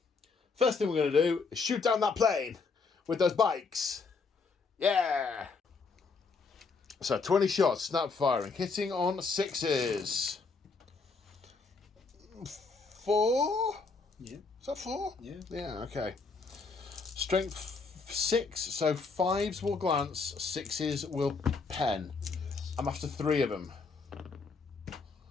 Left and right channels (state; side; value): quieter; right; 4.5 dB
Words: First thing we're going to do is shoot down that plane with those bikes. Yeah! So 20 shots, snap firing, hitting on 6s. 4? Yeah. Is that 4? Yeah. Yeah, okay. Strength 6, so 5s will glance, 6s will pen. I'm after 3 of them.